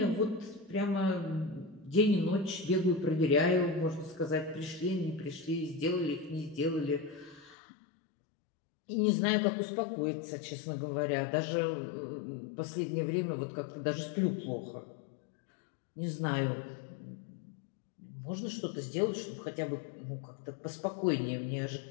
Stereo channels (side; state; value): right; drops out; at 7.6 s